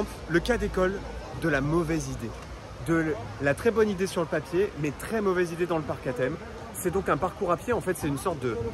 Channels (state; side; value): identical; both; correlation 1.00